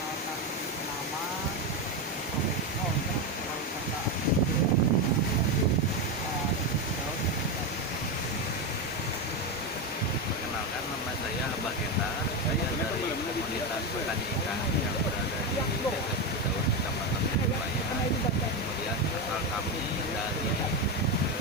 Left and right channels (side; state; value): both; normal; correlation 0.12